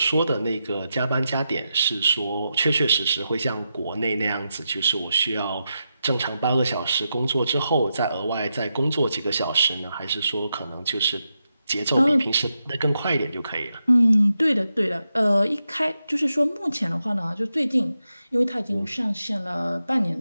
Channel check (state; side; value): inverted; both; correlation -0.87